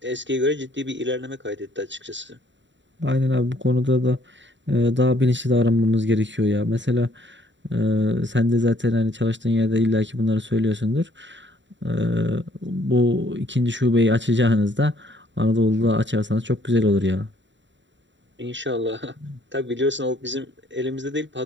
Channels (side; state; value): left; late; 0.54 ms